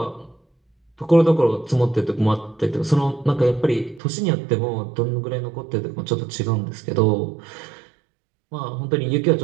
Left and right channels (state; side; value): drops out; left; at 4.0 s